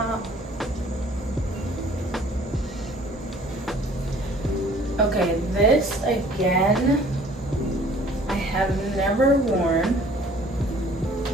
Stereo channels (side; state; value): both; normal; correlation 0.54